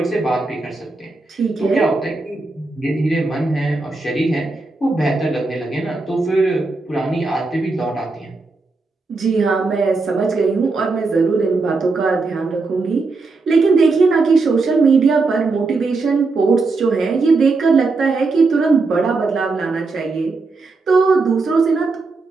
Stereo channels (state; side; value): quieter; left; 3.8 dB